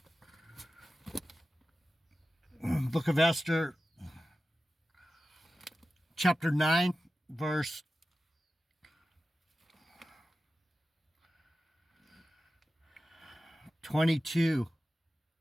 Book of Esther, chapter 9, verse 22.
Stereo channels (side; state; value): both; normal; correlation 0.94